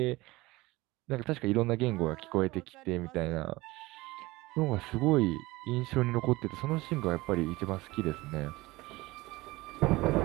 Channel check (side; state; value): left; quieter; 20.6 dB